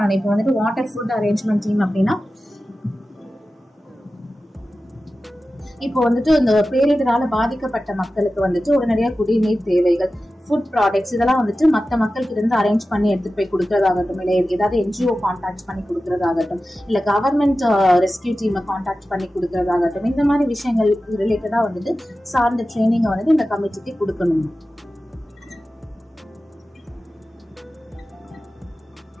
இப்போ வந்துட்டு வாட்டர் ஃபுட் அரேஞ்ச்மெண்ட் டீம் அப்படின்னா இப்போ வந்துட்டு இந்த பேரிடரால பாதிக்கப்பட்ட மக்களுக்கு வந்துட்டு உடனடியா குடிநீர் தேவைகள், ஃபுட் ப்ராடக்ட்ஸ் இதெல்லாம் வந்துட்டு மற்ற மக்களுக்கு இருந்து அரேஞ்ச் பண்ணி எடுத்துட்டு போய் கொடுக்கறதாகட்டும், இல்லை ஏதாவது NGO கான்டாக்ட் பண்ணி கொடுக்கறதாகட்டும், இல்ல கவர்மெண்ட் ரெஸ்கியூ டீமை கான்டாக்ட் பண்ணி கொடுக்கறதாகட்டும், இந்த மாதிரி விஷயங்கள் ரிலேட்டடா வந்துட்டு சார்ந்த ட்ரைனிங்கை வந்துட்டு இந்த கமிட்டிக்கு கொடுக்கணும்.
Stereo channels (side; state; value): both; normal; correlation 0.94